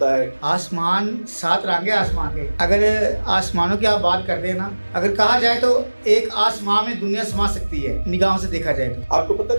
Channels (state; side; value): inverted; both; correlation -1.00